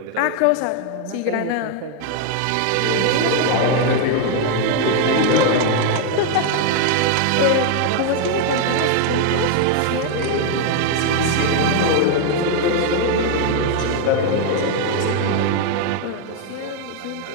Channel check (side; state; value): both; different; correlation 0.00